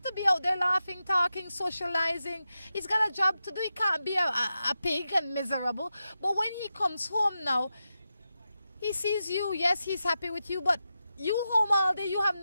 to be out there laughing, talking, socializing. He's got a job to do. He can't be a pig and miserable. But when he comes home now, he sees you. Yes, he's happy with you, but you home all day, you have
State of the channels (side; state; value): both; inverted; correlation -0.89